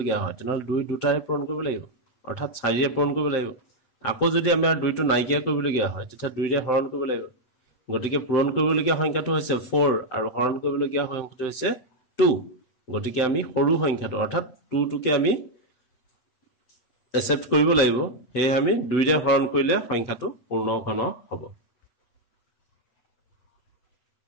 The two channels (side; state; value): right; late; 7.7 ms